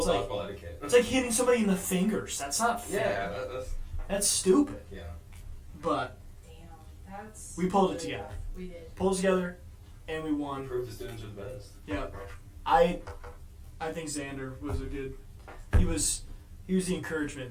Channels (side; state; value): both; identical; correlation 1.00